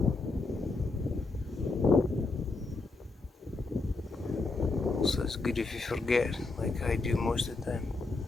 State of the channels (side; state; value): right; quieter; 3.6 dB